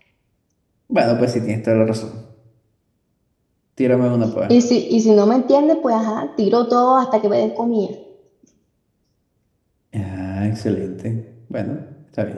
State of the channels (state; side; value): identical; both; correlation 1.00